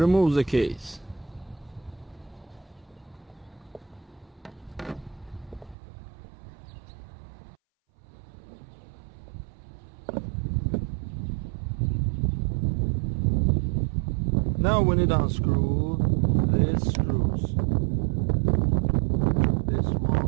the case. Now we need to unscrew these screws. This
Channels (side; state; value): left; drops out; at 5.8 s